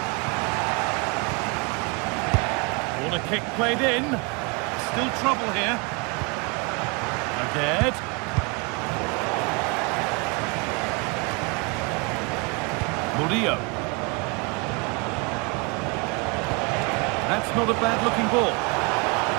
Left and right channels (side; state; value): left; quieter; 30.5 dB